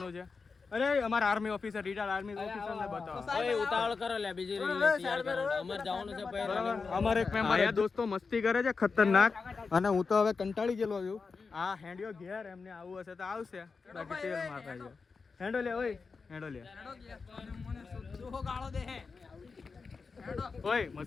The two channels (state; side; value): quieter; right; 4.7 dB